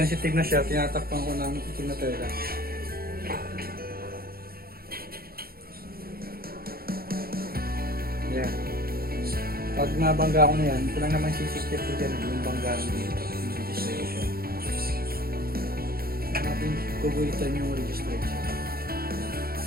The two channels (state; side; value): late; left; 0.44 ms